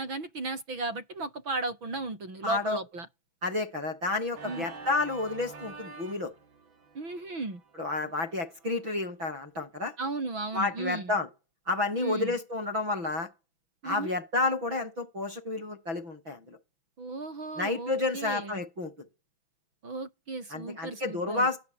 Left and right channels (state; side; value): late; left; 6.1 ms